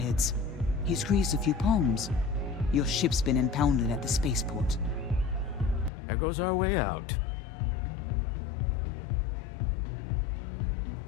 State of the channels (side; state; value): right; drops out; at 5.9 s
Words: He's greased a few palms. Your ship's been impounded at the spaceport. There goes our way out.